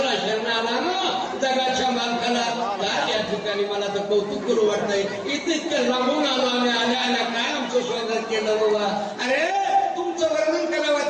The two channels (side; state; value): both; identical; correlation 1.00